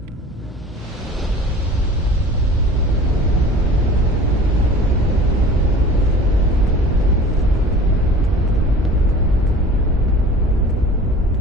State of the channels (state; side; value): normal; both; correlation 0.43